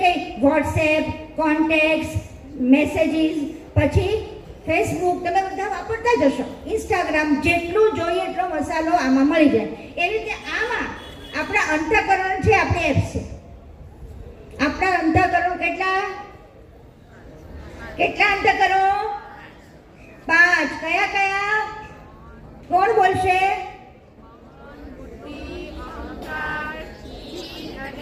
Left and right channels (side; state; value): both; identical; correlation 1.00